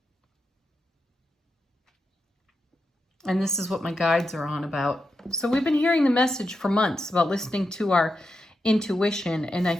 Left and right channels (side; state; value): both; normal; correlation 0.87